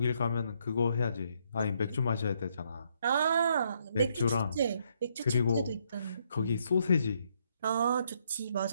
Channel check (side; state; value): both; inverted; correlation -0.72